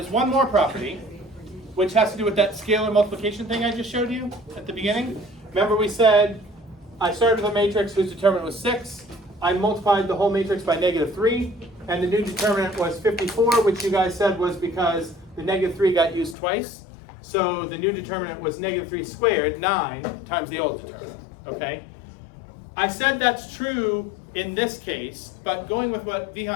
one more property, which has to do with that scalar multiplication thing I just showed you at the beginning. Remember we said I started with a matrix whose determinant was 6. I multiplied the whole matrix by -3, and the new determinant was 54, which you guys said was because the -3 got used twice. So the new determinant was -3 squared, 9, times the old determinant, okay? I said that's true in this case, but going with what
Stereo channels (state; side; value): drops out; right; at 16.4 s